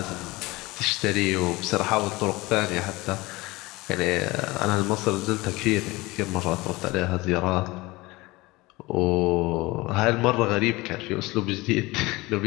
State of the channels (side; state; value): right; quieter; 21.5 dB